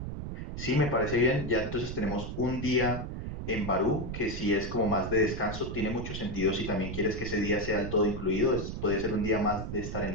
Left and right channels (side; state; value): right; noise; rumble, 6 dB below the sound